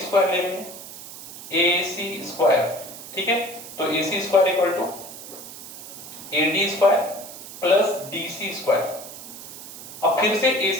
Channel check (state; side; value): noise; right; hiss, 13 dB below the sound